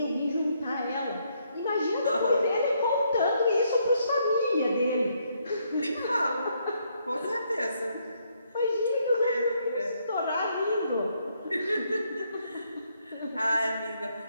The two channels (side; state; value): both; inverted; correlation -0.73